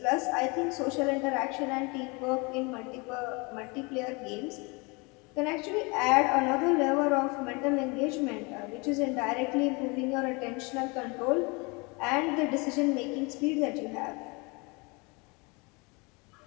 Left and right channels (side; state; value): right; quieter; 28.6 dB